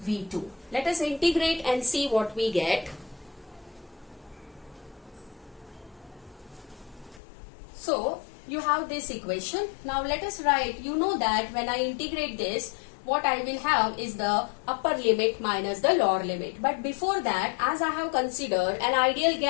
V2. Let us integrate and see what we get. So you have this equation. Now let us write, you know that when I integrate this, what I will have is the upper limit minus the lower limit. But before that, as I have considered an ideal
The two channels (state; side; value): drops out; right; at 7.2 s